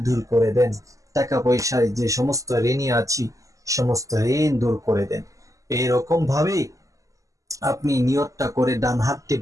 দূর করে দেন, টাকা পয়সায় যে সমস্ত ঋণী আছি সমস্ত ঋণ দূর করে দেন। এরকম ভাবে আপনি নিয়তটা করে ডান হাতটি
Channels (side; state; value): left; late; 0.16 ms